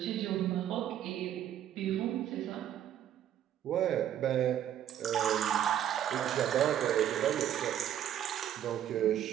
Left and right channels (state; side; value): quieter; left; 10.7 dB